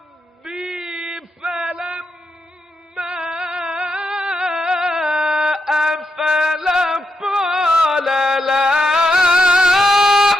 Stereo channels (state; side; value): normal; both; correlation 0.83